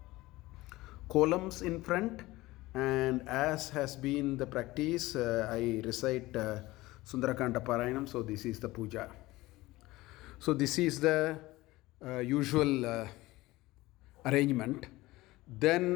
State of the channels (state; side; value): quieter; right; 19.0 dB